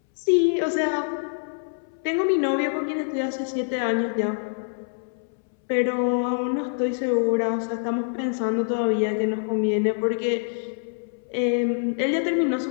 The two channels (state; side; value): silent; right; 62 dB below the other